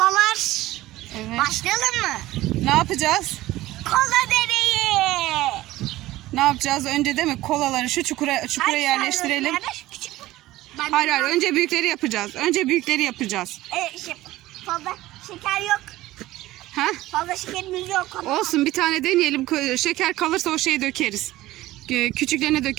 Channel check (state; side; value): quieter; left; 16.7 dB